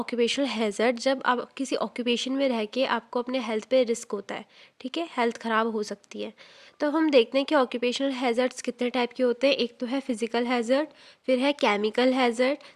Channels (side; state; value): both; identical; correlation 1.00